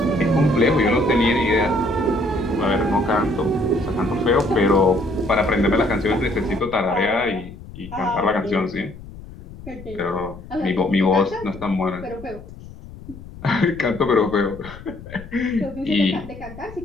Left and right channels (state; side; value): noise; left; rumble, 16 dB below the sound